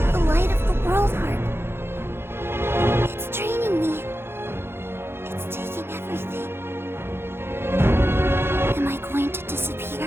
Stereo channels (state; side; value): late; left; 0.11 ms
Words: The light of the World Heart. It's draining me. It's taking everything. Am I going to